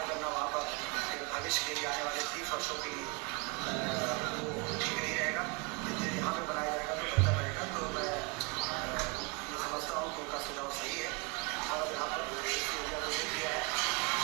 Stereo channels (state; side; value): quieter; left; 29.3 dB